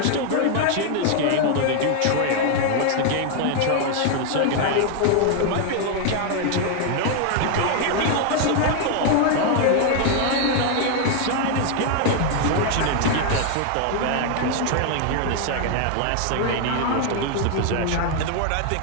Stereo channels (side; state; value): both; different; correlation 0.00